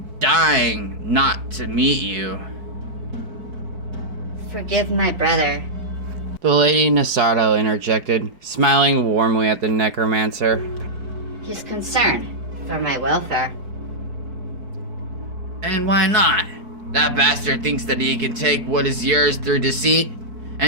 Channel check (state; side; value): late; left; 4.6 ms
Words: dying not to meet you." Forgive my brother. The Lady Nasardo interjected, smiling warmly at the necromancer. He's concerned for my welfare. And why not? That bastard thinks that he can take what is yours through deceit,